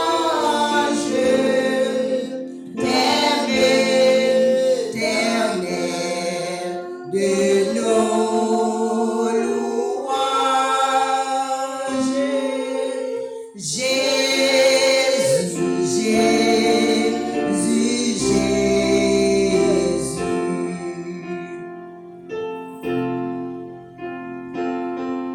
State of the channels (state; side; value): identical; both; correlation 1.00